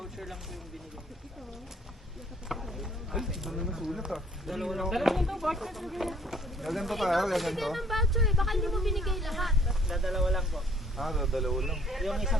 lang po yung binigay. Ay, ano na sulat ah. Dalawa lang. Gaganto tayo, gaganto. Ng voucher eh. Baka hindi mo binigay lahat. Dalawa lang po. Ah, dalawa lang. Yung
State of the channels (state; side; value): normal; both; correlation 0.59